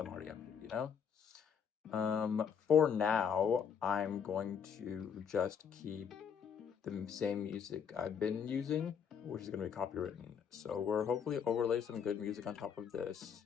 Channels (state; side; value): quieter; right; 7.3 dB